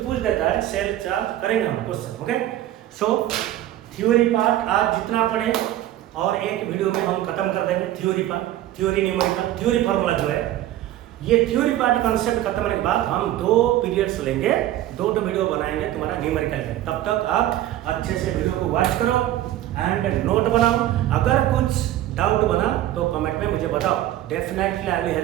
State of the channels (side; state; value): left; quieter; 13.5 dB